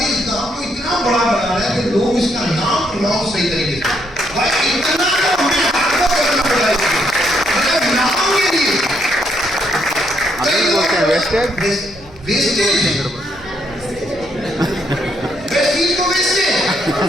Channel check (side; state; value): left; noise; rumble, 22 dB below the sound